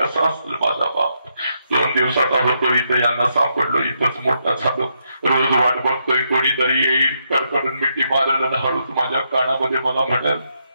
असेल माझा बाप. 2 दिवसाचा होतो इथं, यांना सापडलो, इथंच मोठा झालो. रोज वाट बघतोय कोणीतरी येईल, कडकडून मिठी मारायला ना हळूच माझ्या कानामध्ये मला म्हणाल,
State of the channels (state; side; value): inverted; both; correlation -0.79